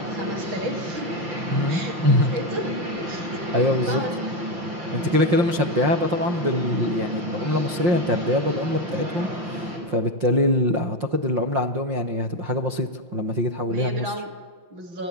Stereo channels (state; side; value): late; left; 5.7 ms